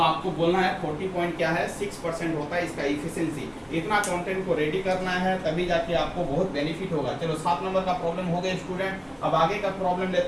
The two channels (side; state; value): both; identical; correlation 1.00